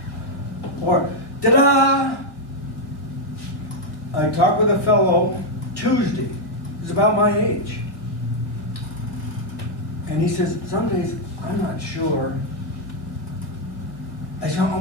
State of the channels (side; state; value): right; late; 1.8 ms